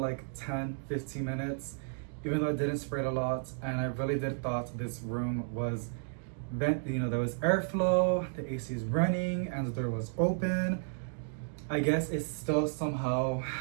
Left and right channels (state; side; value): silent; left; digital silence